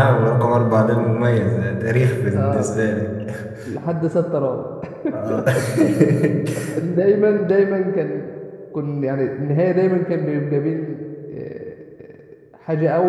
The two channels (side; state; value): both; identical; correlation 1.00